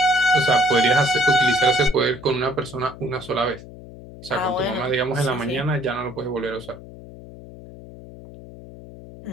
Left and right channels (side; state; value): left; noise; hum, 16 dB below the sound